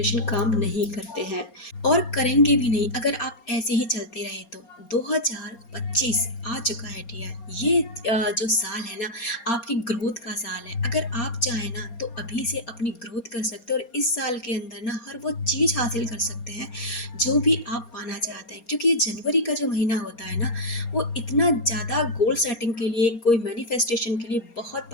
काम नहीं करते हैं और करेंगे भी नहीं अगर आप ऐसे ही चलते रहे तो। 2025 आ चुका है डियर। ये जो साल है ना, आपकी ग्रोथ का साल है। अगर आप चाहें ना तो अभी से अपनी ग्रोथ कर सकते हो और इस साल के अंदर ना हर वो चीज़ हासिल कर सकते हैं जो भी आप पाना चाहते हैं, क्योंकि ये जनवरी का जो महीना होता है ना, वो इतना ज़्यादा गोल सेटिंग के लिए, कोई मैनिफेस्टेशन के लिए बहुत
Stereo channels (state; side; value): late; right; 4.3 ms